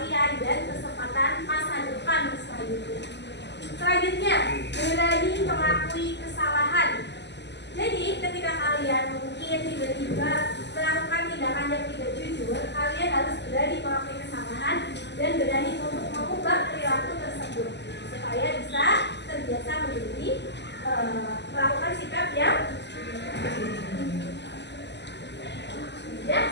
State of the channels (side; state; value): right; late; 0.50 ms